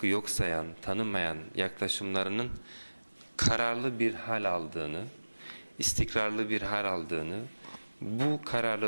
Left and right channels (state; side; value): inverted; both; correlation -1.00